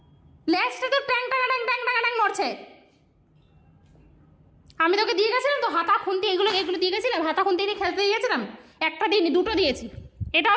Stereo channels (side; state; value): both; identical; correlation 1.00